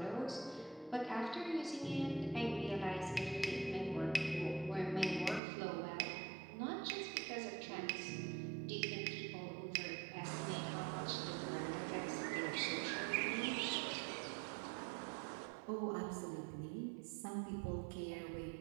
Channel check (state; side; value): drops out; left; at 5.4 s